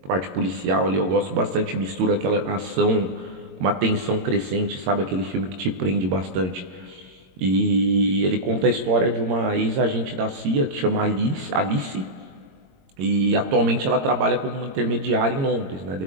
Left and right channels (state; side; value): late; left; 22 ms